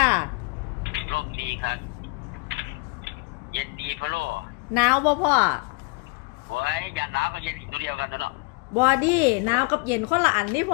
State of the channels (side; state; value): right; quieter; 29.5 dB